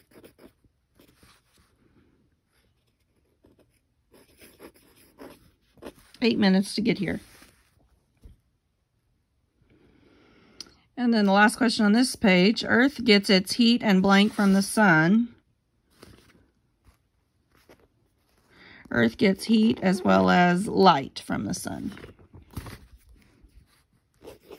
eight minutes to get here. And then the last question on this page, Earth gets its heat and blank from the sun. Earth gets heat as well as light from the sun.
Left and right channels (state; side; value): identical; both; correlation 1.00